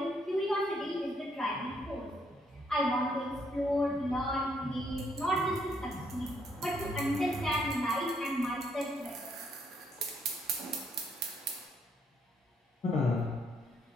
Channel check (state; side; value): normal; both; correlation 0.72